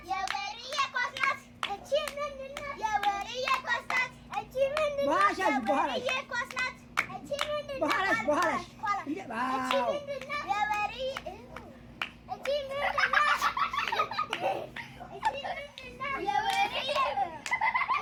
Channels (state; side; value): identical; both; correlation 1.00